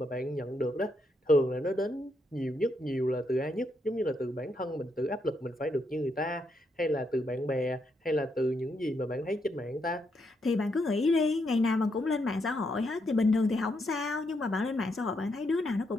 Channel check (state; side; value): normal; both; correlation 0.78